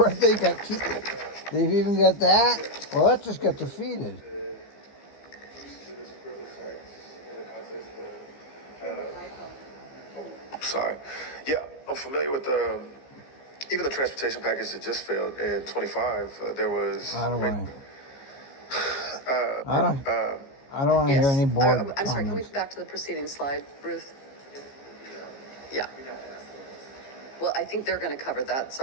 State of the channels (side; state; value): right; late; 15 ms